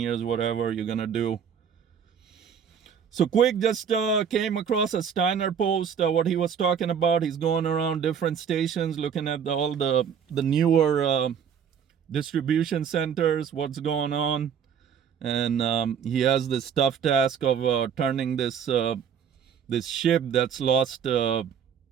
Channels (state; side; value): quieter; left; 7.6 dB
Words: whatever you're gonna do. So quick, just came across a Steiner post, what he was talking about. He's going around different stations looking at all the newer distribution centers, what's going on. And he has this tough task of turning this ship that's lost